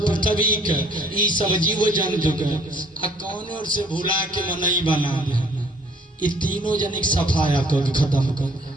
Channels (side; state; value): both; normal; correlation 0.58